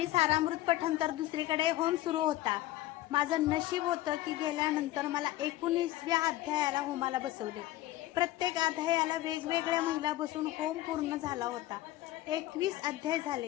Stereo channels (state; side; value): quieter; right; 15.8 dB